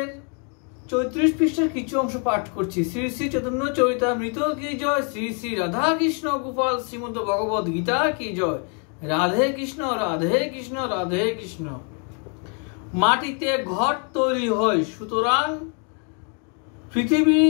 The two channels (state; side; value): quieter; right; 39.9 dB